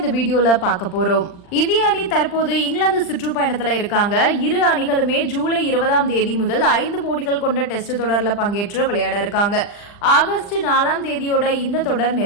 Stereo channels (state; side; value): late; right; 39 ms